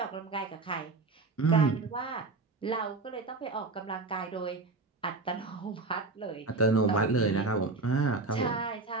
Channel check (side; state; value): left; quieter; 3.6 dB